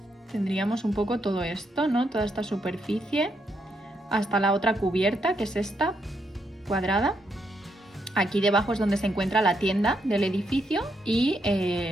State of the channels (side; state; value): both; normal; correlation 0.78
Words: Tendríamos un poco todo esto, ¿no? Toda esta superficie hasta la otra cubierta, que es esta, cuadrada. Aquí debajo es donde se encuentra la tienda del edificio y